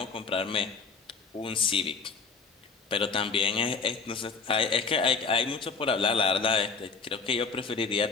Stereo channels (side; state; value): right; quieter; 4.8 dB